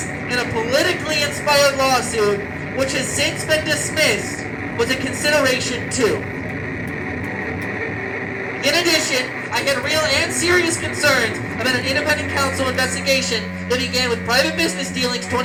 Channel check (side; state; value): both; identical; correlation 1.00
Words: in a politically inspired lawsuit, which has since been dismissed, was a consideration too. In addition, I had real and serious concerns about an independent counsel investigation that began with private business dealings